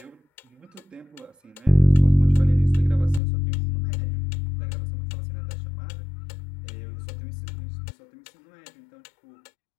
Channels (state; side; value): drops out; right; at 3.2 s